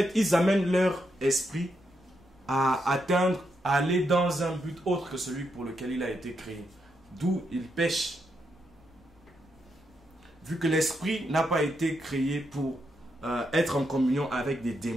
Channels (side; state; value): both; normal; correlation 0.82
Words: ils amènent leur esprit à atteindre, à aller dans un but autre que celui pour lequel il a été créé. D'où ils pêchent. Vu que l'esprit n'a pas été créé pour être en communion avec des